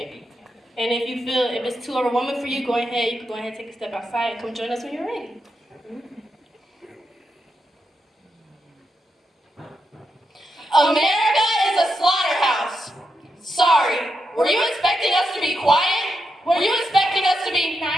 And if you feel if it's too overwhelming for you, you can go ahead and take a step outside and come join us when you're ready. America is a slaughterhouse. Sorry, were you expecting us to be quiet? Were you expecting us to be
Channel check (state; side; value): normal; both; correlation 0.85